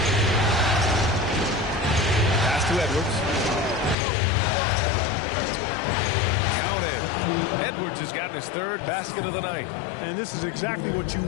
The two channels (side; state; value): right; drops out; at 4.0 s